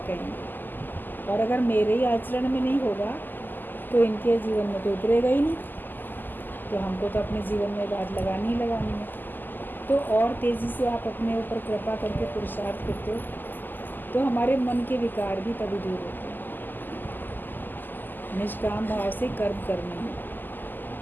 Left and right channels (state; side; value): late; right; 0.089 ms